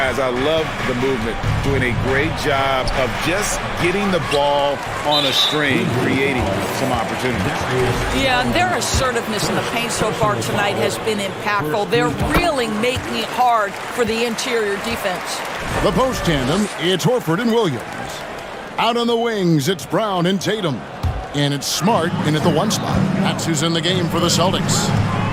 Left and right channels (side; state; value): both; identical; correlation 1.00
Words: I love the movement, doing a great job of just getting the ball on a string, creating some opportunities. Yeah, and their assertiveness in the paint so far tonight has been impactful. They're really making it hard for the interior defense. The post tandem, it's Horford and Williams. Out on the wings, it's Brown and Tatum. And it's Smart in at the 1 spot. That's who's in the game for the Celtics.